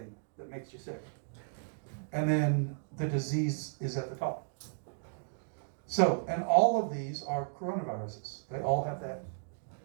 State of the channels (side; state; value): left; silent; digital silence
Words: that makes you sick. And then the disease is at the top. So, and all of these are coronaviruses. They all have that